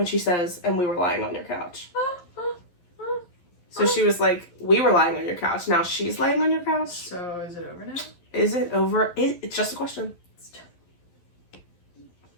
she says, and we were lying on your couch. So she was like, we were lying on your couch. Now she's laying on your couch. So is it over now? Is it over? It's just a question.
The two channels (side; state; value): right; late; 11 ms